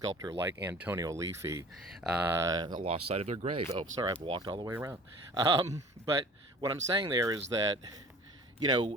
like Antonio Aliffi. Lost sight of their grave. Oh, sorry, I've walked all the way around. But what I'm saying there is that, the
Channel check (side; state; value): both; normal; correlation 0.44